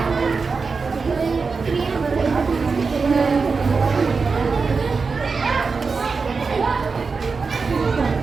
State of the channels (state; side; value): quieter; left; 4.7 dB